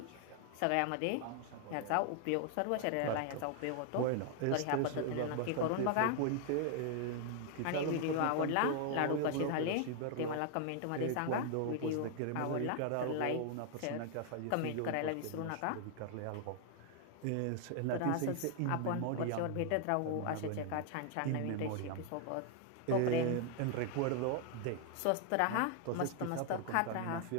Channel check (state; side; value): different; both; correlation 0.00